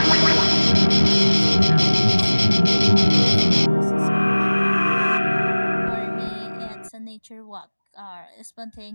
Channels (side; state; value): both; inverted; correlation -1.00